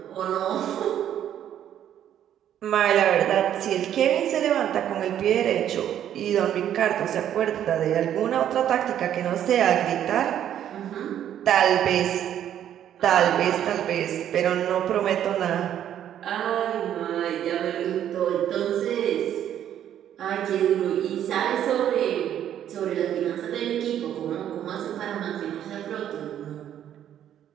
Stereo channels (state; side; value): quieter; left; 10.5 dB